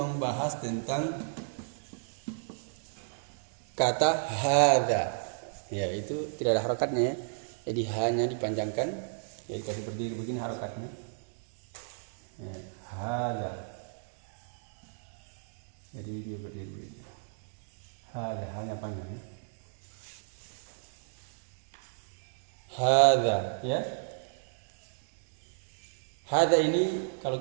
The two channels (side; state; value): left; silent; digital silence